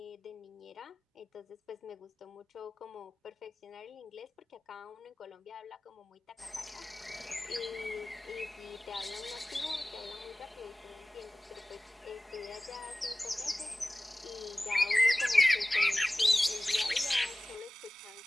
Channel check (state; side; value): normal; both; correlation 0.97